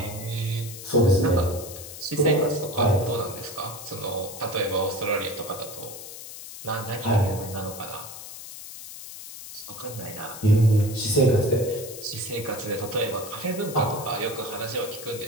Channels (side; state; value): left; noise; hiss, 12 dB below the sound